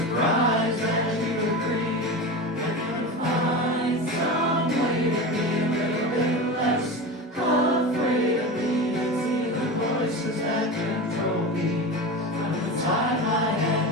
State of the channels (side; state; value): both; normal; correlation 0.27